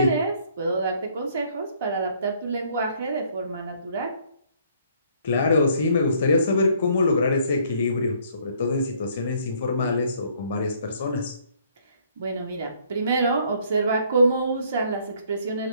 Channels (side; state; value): both; inverted; correlation -0.64